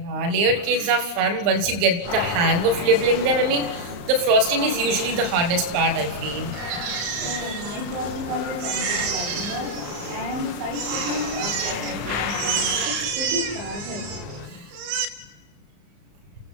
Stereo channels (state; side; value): late; left; 34 ms